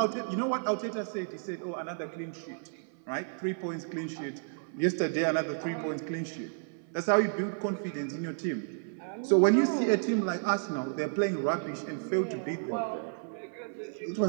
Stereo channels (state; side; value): silent; left; 57 dB below the other